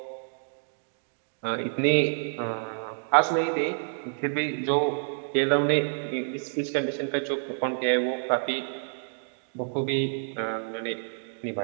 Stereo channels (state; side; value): silent; left; digital silence